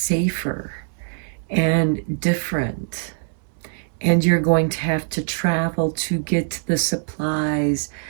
and different. And you're going to have to travel to get the supplies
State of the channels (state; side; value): silent; left; digital silence